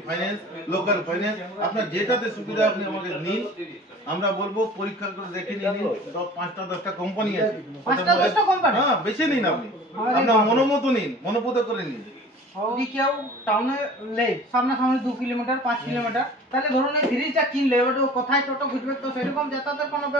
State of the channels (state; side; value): normal; both; correlation 0.44